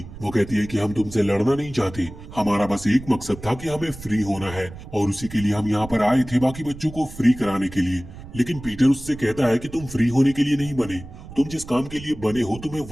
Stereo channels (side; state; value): right; noise; rumble, 15 dB below the sound